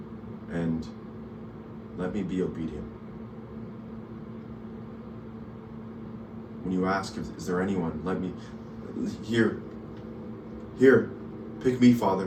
and let me be obedient. When you ask, is there anyone, let me, here, pick me,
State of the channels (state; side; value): identical; both; correlation 1.00